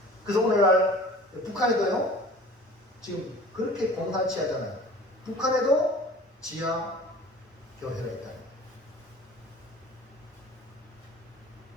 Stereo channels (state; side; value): normal; both; correlation 0.45